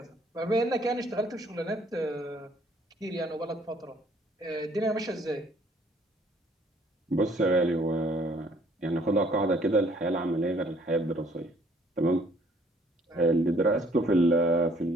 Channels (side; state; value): both; normal; correlation 0.61